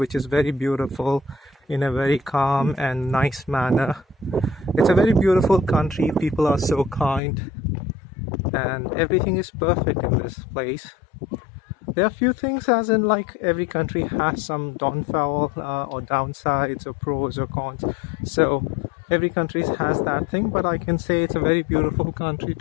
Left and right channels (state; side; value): drops out; right; at 7.2 s